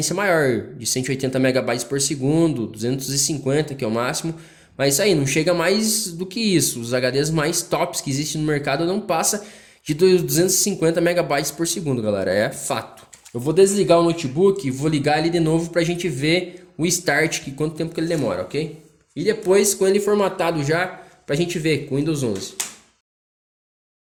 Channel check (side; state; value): both; identical; correlation 1.00